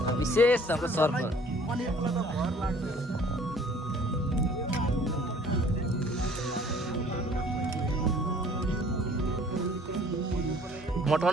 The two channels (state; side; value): normal; both; correlation 0.54